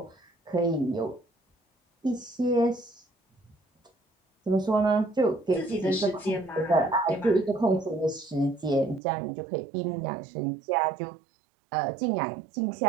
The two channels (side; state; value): left; drops out; at 9.0 s